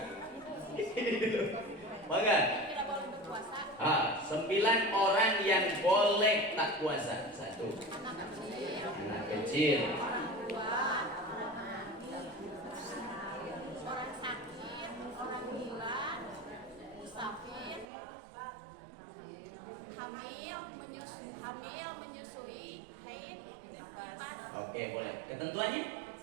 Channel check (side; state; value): left; drops out; at 17.9 s